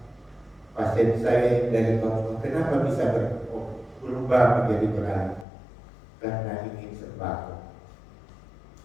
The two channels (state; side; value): drops out; right; at 5.5 s